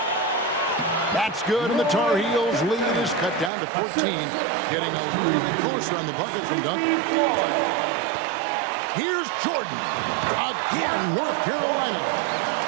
That's good, and the Tar Heels lead is cut down to 14. Getting a little bit closer on the bucket from Duncan. Here's Jordan. Again, North Carolina.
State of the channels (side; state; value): left; drops out; at 3.5 s